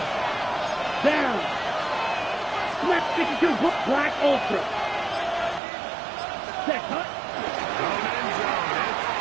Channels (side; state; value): left; drops out; at 5.6 s